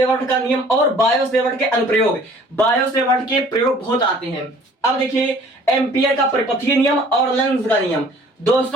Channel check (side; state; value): both; normal; correlation 0.53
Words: का नियम और बायोसेवर्ट के अनुप्रयोग, बायोसेवर्ट के प्रयोग बहुत आते हैं। अब देखिए एम्पियर का परिपथीय नियम और लेंस का नियम,